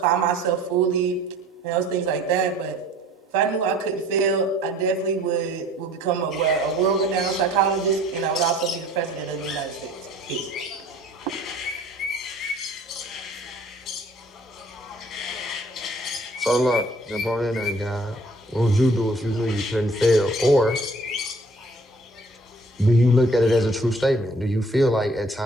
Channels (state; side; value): normal; both; correlation 0.53